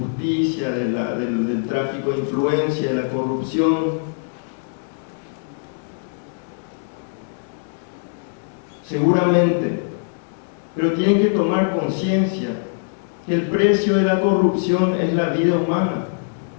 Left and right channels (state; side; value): silent; right; digital silence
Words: del tráfico de influencia, de la corrupción. Seguramente, pero tienen que tomar conciencia que el precio de la corrupción es la vida humana,